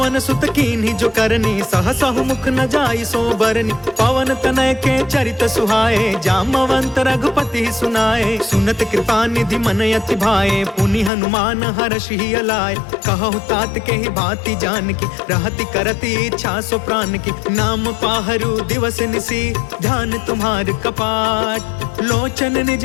सुत कीन्ही जो करनी, सहसहु मुख न जाई सो बरनी, पवन तनय के चरित सुहाए, जामवंत रघुपति सुनाए, सुनत कृपा निधि मन अति भाए, पुनि हनुमान हर्षि अलाय, कहु तात के ही भांति जान की, रहति करति इच्छा सो प्राण की, नाम पाहरु दिवस निसी, ध्यान तुम्हार कपाट, लोचन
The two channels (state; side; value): drops out; right; at 11.1 s